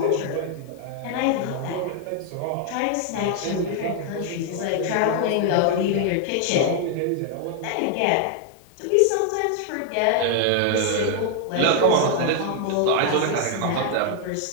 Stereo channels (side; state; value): both; different; correlation 0.00